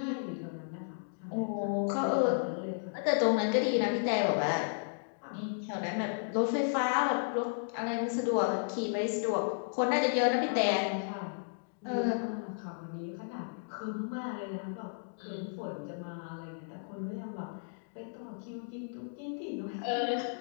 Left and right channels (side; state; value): right; silent; digital silence